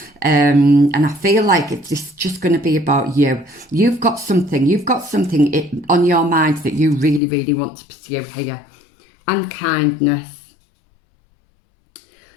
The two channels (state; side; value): drops out; right; at 7.2 s